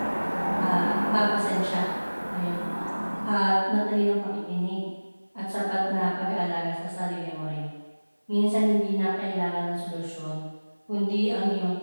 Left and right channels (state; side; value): inverted; both; correlation -1.00